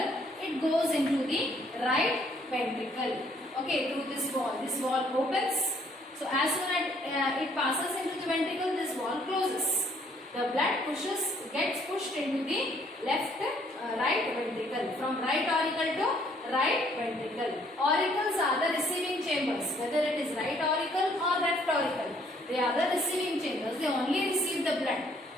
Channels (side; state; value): both; normal; correlation 0.64